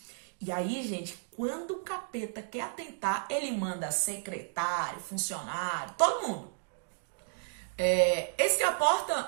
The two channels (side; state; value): left; silent; 56 dB below the other